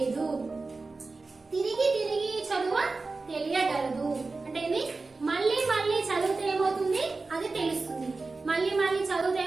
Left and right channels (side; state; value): left; quieter; 3.8 dB